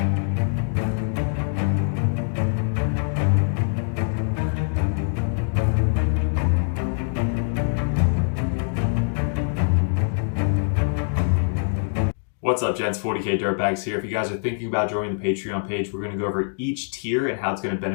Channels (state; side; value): silent; right; digital silence